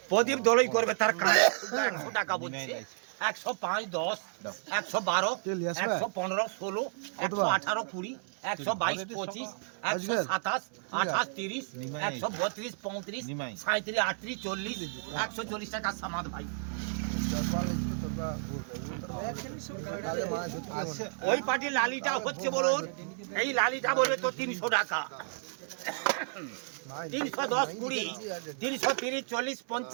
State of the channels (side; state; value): left; silent; 56 dB below the other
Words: প্রদীপ দলই করবে তার কাঁটা 100 টাকা বলছে। 105, 10, 112, 115, 16, 118, 20, 122, 25, 127, 28, 30, 132, 35, 37, 38, 40, 140 টাকা সামাদ ভাই। ওই পার্টির লালিটা হচ্ছে বলুন এই লালিটা বলবে তো 300 টাকা। 310, 20, 330, 40,